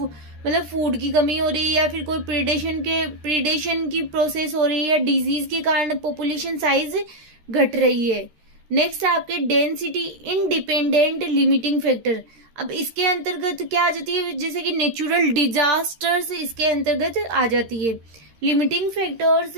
फूड की कमी हो रही है या फिर कोई प्रीडेशन की प्रोसेस हो रही है या डिजीज के कारण पॉपुलेशन साइज घट रही है। नेक्स्ट आपके डेंसिटी इंडिपेंडेंट लिमिटिंग फैक्टर, अब इसके अंतर्गत क्या आ जाती है, जैसे कि नेचुरल डिजास्टर्स इसके अंतर्गत आ जाती है। Limiting factors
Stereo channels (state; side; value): late; left; 13 ms